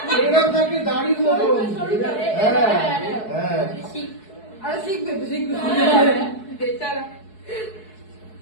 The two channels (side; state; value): right; late; 4.7 ms